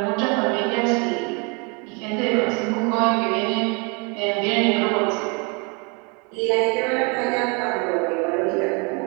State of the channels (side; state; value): left; quieter; 32.1 dB